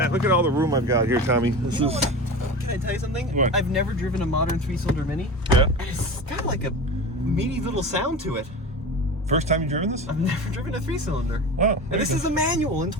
Look at all the room I've got here, Tommy. This You know is. what? Can I tell you something? What? I've never driven a modern 3-cylinder Mini. Yeah. It's got like a meaty little sound to it. First time you've driven this? I've never driven a 3-cylinder. Wow. And this is a manual in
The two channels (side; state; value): both; normal; correlation 0.30